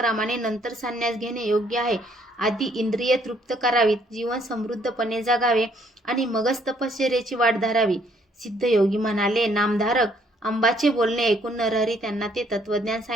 नंतर संन्यास घेणे योग्य आहे. आधी इंद्रिय तृप्त करावीत, जीवन समृद्धपणे जगावे आणि मगच तपश्चर्येची वाट धरावी. सिद्धयोगी म्हणाले, नामधारक. अंबाचे बोलणे ऐकून नरहरी त्यांना ते तत्वज्ञान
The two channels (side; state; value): both; normal; correlation 0.66